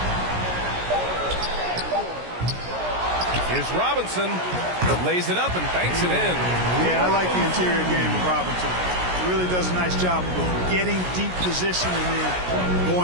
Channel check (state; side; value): late; left; 17 ms